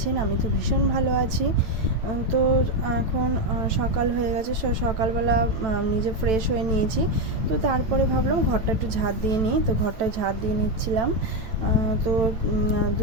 আমি তো ভীষণ ভালো আছি। তো এখন সকাল হয়ে গেছে। সকালবেলা নিজে ফ্রেশ হয়ে নিয়েছি। তো তারপরে ভাবলাম ঘরটা একটু ঝাঁট দিয়ে নিই। তো ঘরটা ঝাঁট দিয়ে নিচ্ছিলাম। তো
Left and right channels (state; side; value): late; left; 9.0 ms